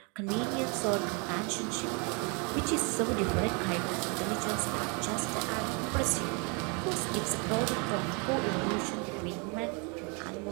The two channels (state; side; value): quieter; left; 33.6 dB